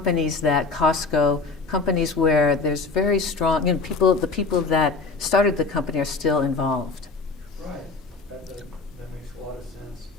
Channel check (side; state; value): right; quieter; 4.0 dB